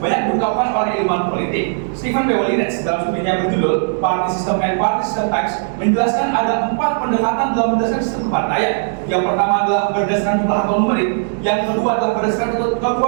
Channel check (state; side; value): silent; left; 62 dB below the other